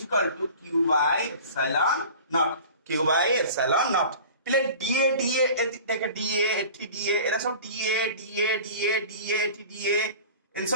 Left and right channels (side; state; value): both; inverted; correlation -0.40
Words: equal to q by epsilon naught পিলে dA দেখে dA এটি dA এরা সব dA এটি dA इन